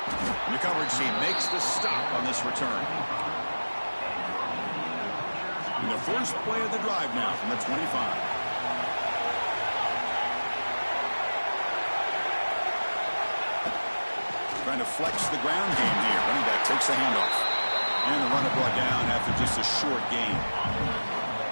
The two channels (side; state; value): both; inverted; correlation -1.00